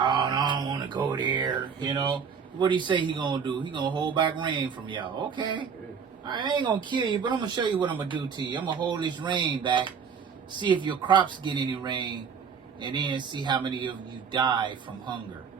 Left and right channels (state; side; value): quieter; left; 6.5 dB